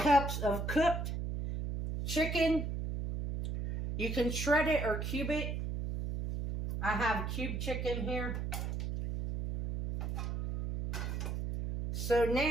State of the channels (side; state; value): right; noise; hum, 3 dB below the sound